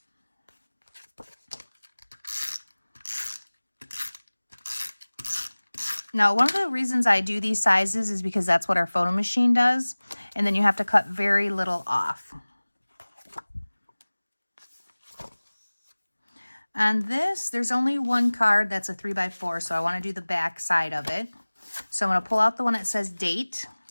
Now, one of the reasons I do these sizes is because that's what our photo machine does. And then you have to cut very little off. On this, there's only one card that's a 3x4, so I want to do the back side of it. So I'm going to pull out the one that says date.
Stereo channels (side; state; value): both; inverted; correlation -1.00